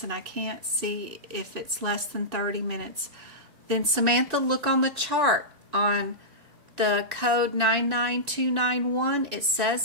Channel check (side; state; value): left; late; 2.6 ms